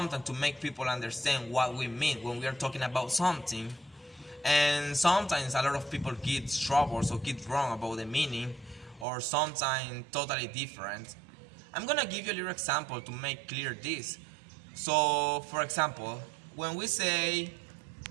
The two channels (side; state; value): left; drops out; at 9.1 s